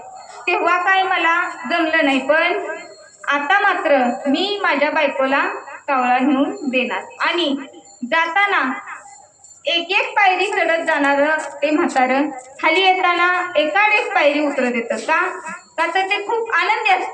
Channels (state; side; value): identical; both; correlation 1.00